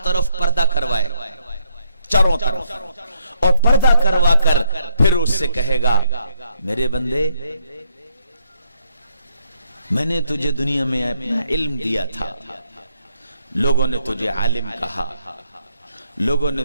طرف پردہ کروائے, چاروں طرف, اور پردہ کروا کر پھر اس سے کہے گا میرے بندے میں نے تجھے دنیا میں اپنا علم دیا تھا, لوگوں نے تجھے عالم کہا, لوگوں نے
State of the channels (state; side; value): inverted; both; correlation -0.72